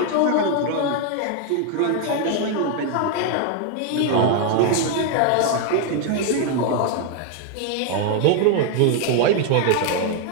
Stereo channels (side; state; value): both; different; correlation 0.00